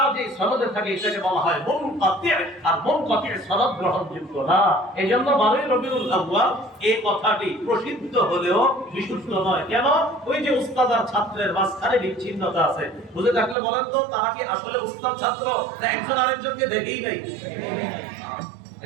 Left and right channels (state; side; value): drops out; left; at 13.6 s